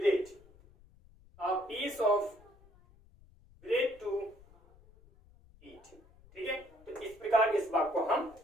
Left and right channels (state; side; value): noise; left; rumble, 26 dB below the sound